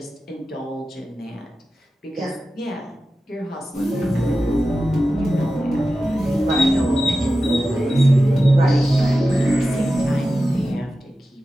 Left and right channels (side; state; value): both; normal; correlation 0.93